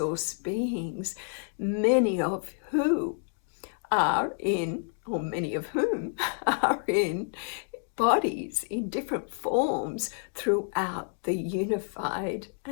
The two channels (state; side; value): silent; right; 58 dB below the other